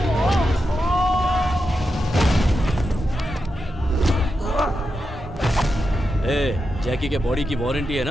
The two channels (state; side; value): normal; both; correlation 0.87